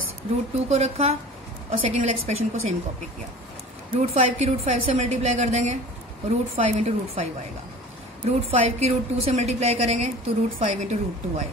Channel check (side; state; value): both; normal; correlation 0.41